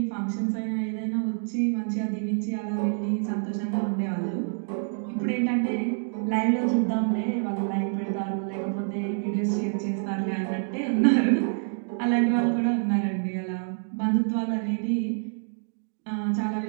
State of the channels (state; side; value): silent; left; digital silence